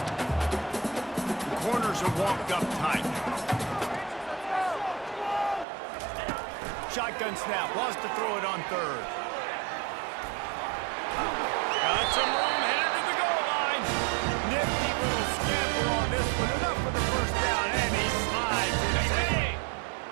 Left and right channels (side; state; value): left; drops out; at 5.7 s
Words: The corners are walked up tight. Shotgun snap, wants to throw it on third. Got some room, headed to the goal line. Nifty little scamper on this one, enough for the first down, and he slides inside.